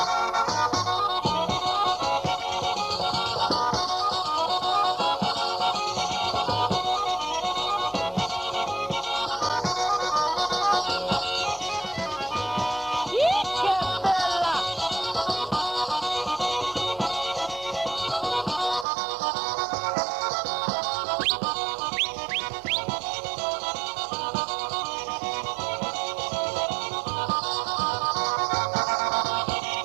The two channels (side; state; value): left; drops out; at 18.9 s